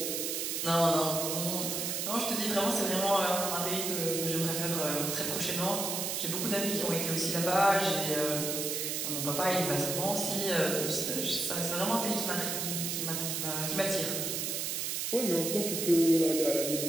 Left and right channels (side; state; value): right; noise; hiss, 1 dB below the sound